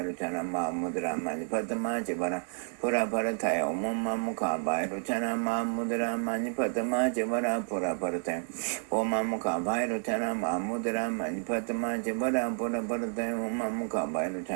마무드라 마니파트마 제바라 보라 바라타이 오마무카 바이로차나 마무드라 마니파트마 제바라 보라 바라타이 오마무카 바이로차나 마무드라 마니파트마 제바라 보라 바라타이 오마무카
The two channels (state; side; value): silent; left; 57 dB below the other